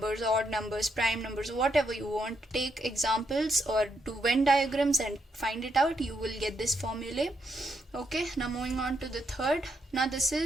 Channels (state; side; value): normal; both; correlation 0.78